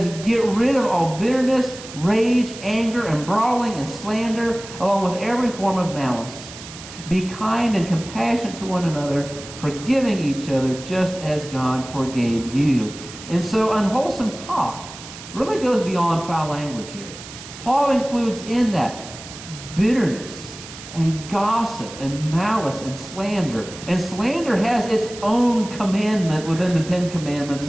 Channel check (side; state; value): right; noise; hiss, 14 dB below the sound